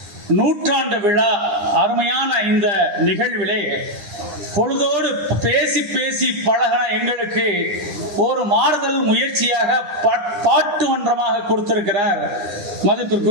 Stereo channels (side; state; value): left; late; 9.9 ms